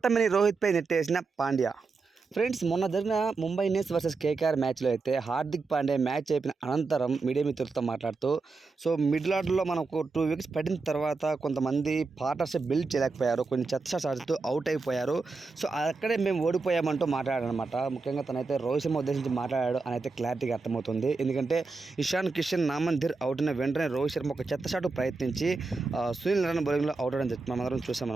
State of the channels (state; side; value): quieter; left; 4.1 dB